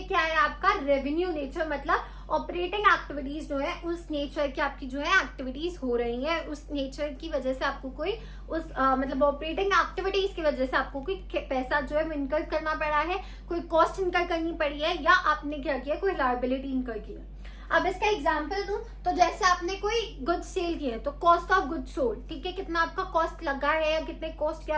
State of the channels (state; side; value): identical; both; correlation 1.00